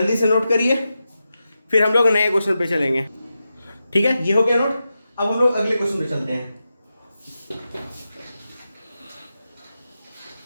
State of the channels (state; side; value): inverted; both; correlation -0.90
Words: से नोट करिए, फिर हम लोग नए क्वेश्चन पे चलेंगे। ठीक है, ये हो गया नोट। अब हम लोग अगले क्वेश्चन पे चलते हैं।